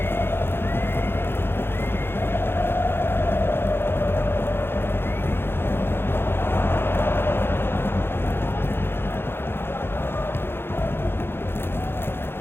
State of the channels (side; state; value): right; late; 0.11 ms